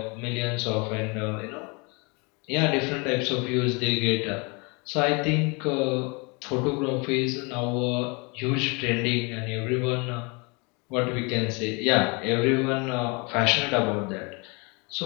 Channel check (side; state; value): right; quieter; 30.3 dB